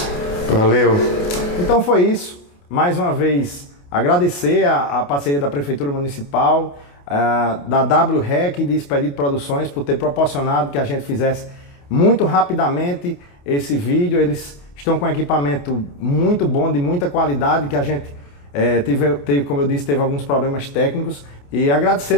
Valeu. Então foi isso. Mais uma vez, agradecer a parceria da Prefeitura Municipal, da WREC e de Expedito Produções por ter proporcionado que a gente fizesse muito rapidamente esse vídeo. Eles estão com equipamento muito bom, de muita qualidade, que a gente teve, como eu disse, teve alguns problemas técnicos. E agradecer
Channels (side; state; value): right; late; 28 ms